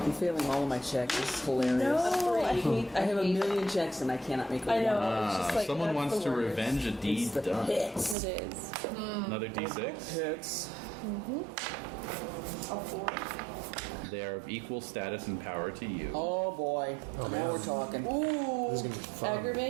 failing all of my checks. This is hilarious. No, I I have a hate- million checks and I cannot make a I know. one. It's just like, Someone that's wants the to worst. revenge a deed It's the done. hits. It is. Another d6. Hits. A 4. They are of equal status and power to you. Oh boy. Now we're talking. This is going to be fun.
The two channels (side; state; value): left; drops out; at 8.2 s